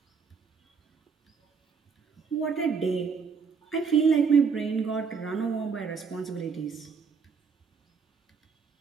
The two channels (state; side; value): quieter; left; 5.7 dB